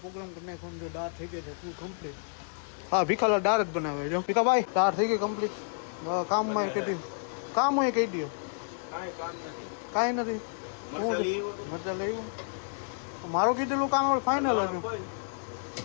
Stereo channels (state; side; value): silent; right; digital silence